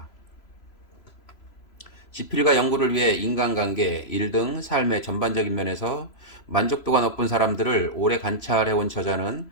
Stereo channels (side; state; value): right; late; 3.0 ms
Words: 지필과 연구를 위해 인간관계, 일 등 삶의 전반적인 면에서 만족도가 높은 사람들을 오래 관찰해온 저자는